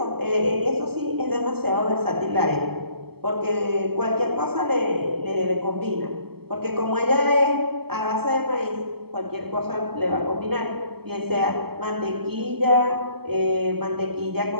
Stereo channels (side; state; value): left; late; 0.96 ms